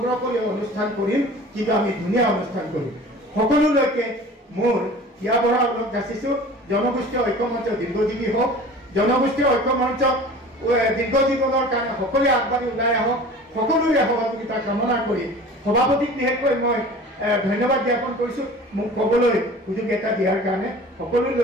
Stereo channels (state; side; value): normal; both; correlation 0.41